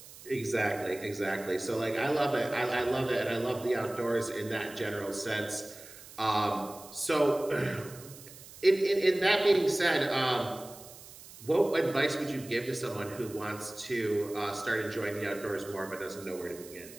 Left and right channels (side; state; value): right; noise; hiss, 18 dB below the sound